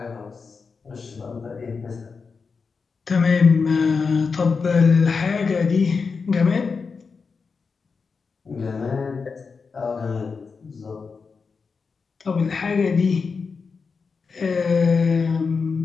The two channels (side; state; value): right; quieter; 5.0 dB